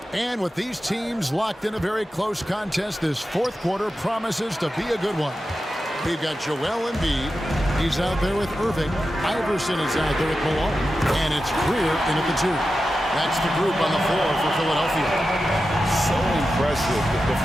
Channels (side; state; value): both; normal; correlation 0.91